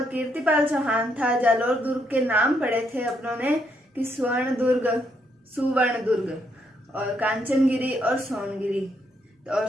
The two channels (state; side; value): normal; both; correlation 0.75